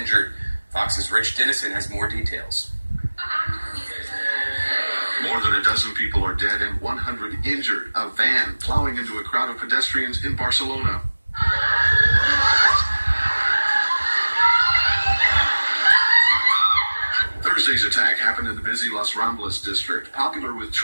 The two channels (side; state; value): both; inverted; correlation -1.00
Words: Fox's Rich Dennison has more details. More than a dozen people are dead and 100 injured. A van plowing into a crowd of pedestrians in Barcelona. Thursday's attack happened in the busy Las Ramblas district, popular with